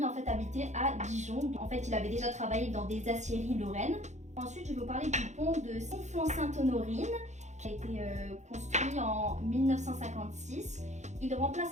en fait habitait à Dijon. En fait, il avait déjà travaillé dans des aciéries lorraines. Ensuite, je vais vous parler du pont de Conflans-Sainte-Honorine, qui a été construit en 1956. Il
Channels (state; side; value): late; left; 0.34 ms